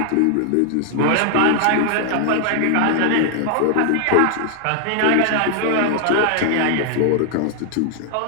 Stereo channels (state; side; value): different; both; correlation 0.00